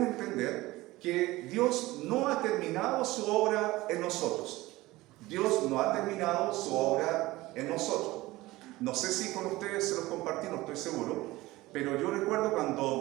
entender que Dios no ha terminado su obra en nosotros. Dios no ha terminado su obra en nosotros. No sé si con ustedes se los compartí, no estoy seguro, pero yo recuerdo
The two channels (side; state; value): left; quieter; 19.0 dB